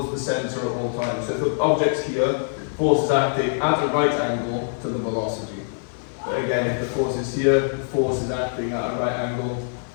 the center at all times. So if the object's here, force is acting at a right angle to the velocity. But again, if the force is here, the force is acting at a right angle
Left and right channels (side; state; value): right; silent; 63 dB below the other